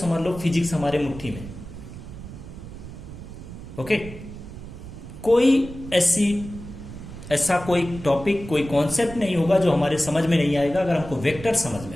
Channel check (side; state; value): right; noise; rumble, 13 dB below the sound